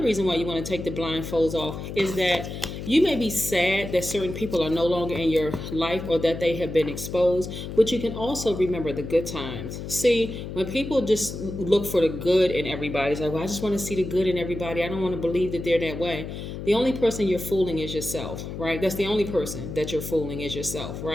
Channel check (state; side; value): noise; left; hum, 8 dB below the sound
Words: reason why you want to take the blindfolds off is that you may be sad that certain people are no longer in your life or that they have been exposed, but you can also remember the good times. See, when people just look for the good in everybody, it's like, well, I just want to see the good in everybody. I don't want to believe that they're that way. The only person you're fooling is yourself, right? That's the only person that you're fooling is yourself,